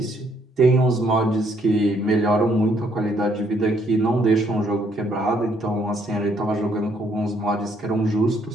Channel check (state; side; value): normal; both; correlation 0.69